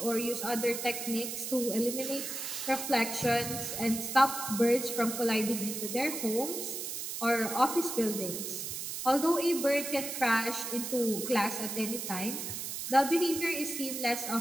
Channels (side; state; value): right; noise; hiss, 5 dB below the sound